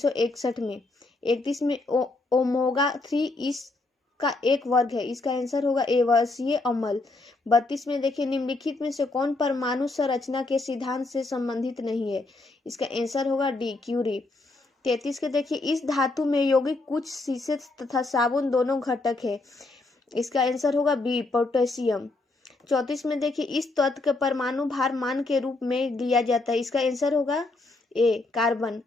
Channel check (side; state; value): right; quieter; 3.2 dB